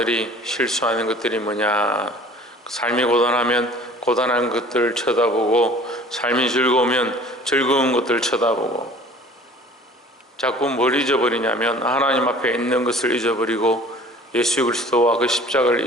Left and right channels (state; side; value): normal; both; correlation 0.47